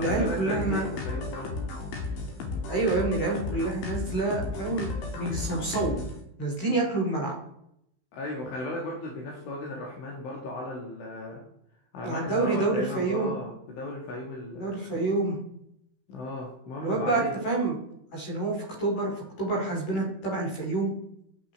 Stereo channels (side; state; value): right; late; 16 ms